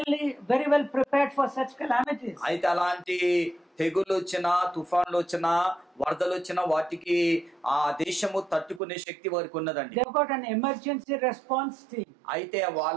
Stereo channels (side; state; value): left; drops out; at 8.8 s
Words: very well prepared for such calamities. అయితే అలాంటి తెగులు వచ్చినా, తుఫాన్లు వచ్చినా, వరదలు వచ్చినా వాటికి ఆ దేశము తట్టుకునే శక్తి వారికి ఉన్నదండి. They've got an emergency response team. అయితే